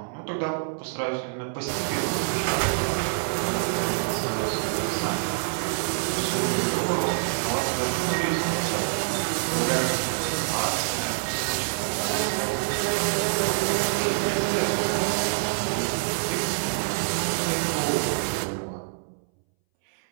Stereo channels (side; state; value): left; silent; 61 dB below the other